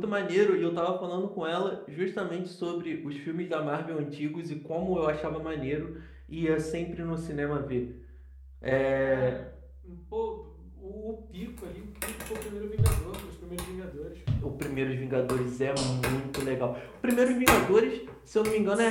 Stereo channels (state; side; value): identical; both; correlation 1.00